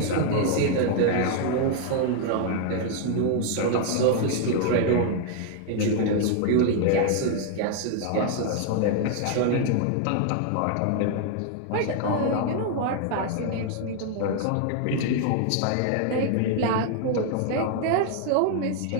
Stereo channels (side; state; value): both; different; correlation 0.00